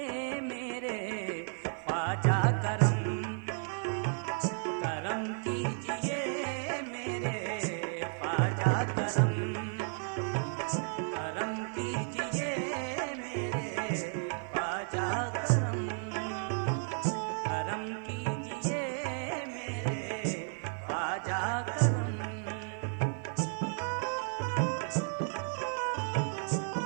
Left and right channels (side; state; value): left; silent; 56 dB below the other